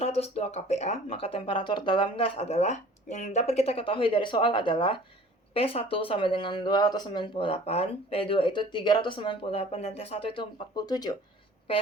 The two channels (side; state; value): both; normal; correlation 0.48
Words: kPa, maka temperatur dalam gas adalah, yang dapat kita ketahui dari soal adalah P1 sama dengan 298, P2 itu 398, dan T1 itu 47.